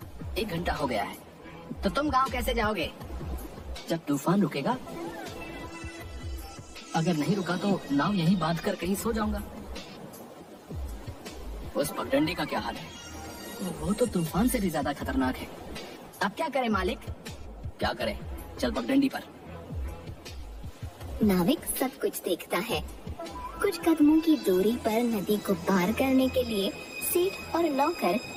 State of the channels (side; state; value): both; identical; correlation 1.00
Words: 1 घंटा हो गया है। तो तुम गांव कैसे जाओगे? जब तूफान रुकेगा। अगर नहीं रुका तो नाव यहीं बांध कर कहीं सो जाऊंगा। उस पगडंडी का क्या हाल है? वो तो तूफान से भी ज्यादा खतरनाक है। अब क्या करें मालिक? क्या करें, चल पगडंडी पर। नाविक सब कुछ देखता है। कुछ कदमों की दूरी पर नदी को पार करने के लिए सेठ और नौकर